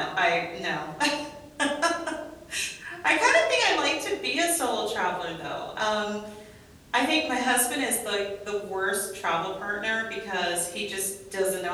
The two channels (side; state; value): both; identical; correlation 1.00